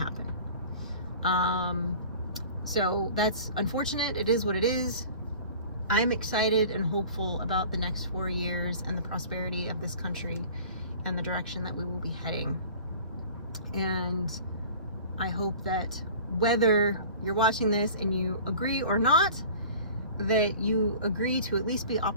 So that's unfortunate. It is what it is. I'm excited and hopeful about the next 4 years and the prosperity of this country and the direction that we will be heading. And I hope that whether you're watching this and you agree or not, that you agree to at least be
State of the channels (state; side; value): inverted; both; correlation -0.43